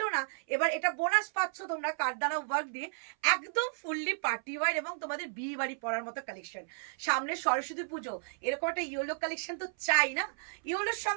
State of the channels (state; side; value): silent; left; 56 dB below the other